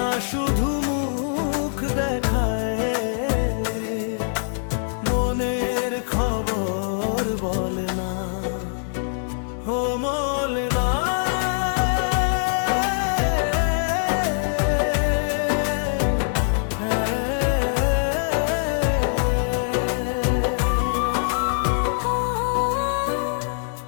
শুধু মুখ দেখায়, মনের খবর বলে না। ও বলে না।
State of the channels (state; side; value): silent; right; digital silence